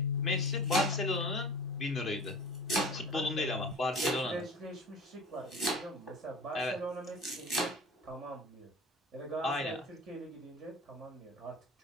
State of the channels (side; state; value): both; normal; correlation 0.39